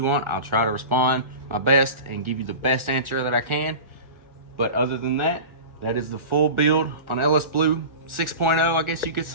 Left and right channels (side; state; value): left; late; 1.4 ms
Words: want. I'll try to respond my best and give you the best answer that I can. But other than that, that is the full build on LS Blue 6.0, I guess you could